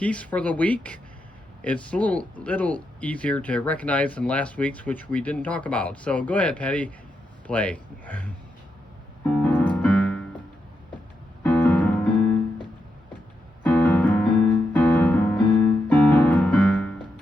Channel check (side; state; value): both; normal; correlation 0.84